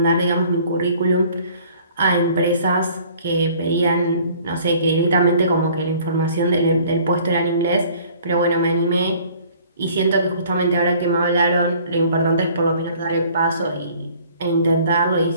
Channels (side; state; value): both; inverted; correlation -0.54